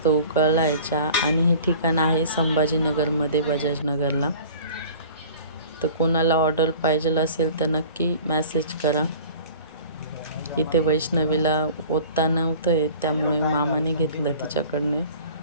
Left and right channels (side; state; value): both; inverted; correlation -0.44